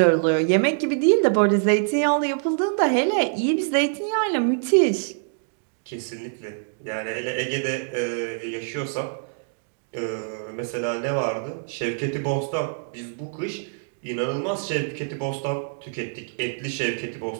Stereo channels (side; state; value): left; silent; digital silence